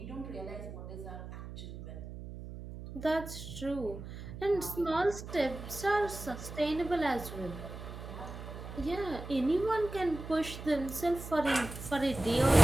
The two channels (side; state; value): right; noise; hum, 10 dB below the sound